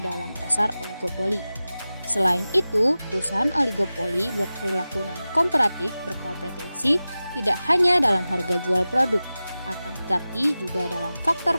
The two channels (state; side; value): inverted; both; correlation -0.96